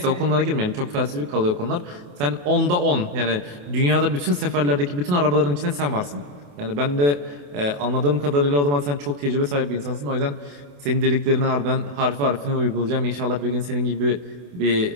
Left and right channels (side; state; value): left; late; 28 ms